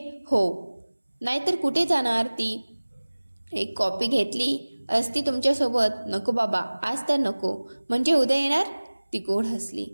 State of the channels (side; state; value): both; inverted; correlation -1.00